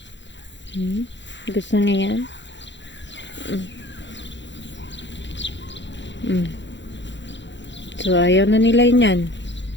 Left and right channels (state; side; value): late; right; 0.53 ms